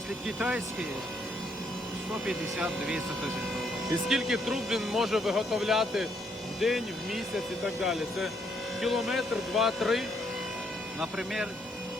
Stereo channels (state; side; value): normal; both; correlation 0.72